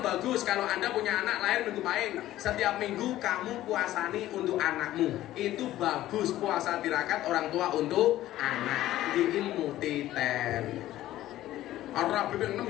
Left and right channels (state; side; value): quieter; right; 14.4 dB